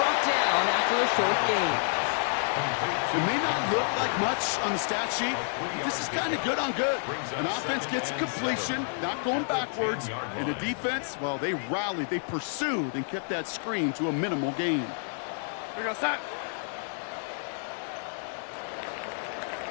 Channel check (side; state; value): right; silent; digital silence